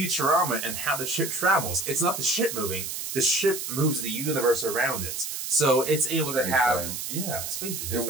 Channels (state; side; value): noise; right; hiss, 5 dB below the sound